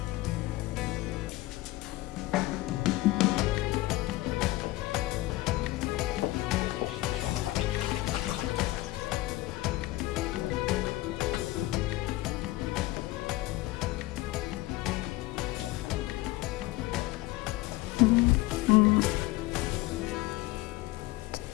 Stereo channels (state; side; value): quieter; right; 18.5 dB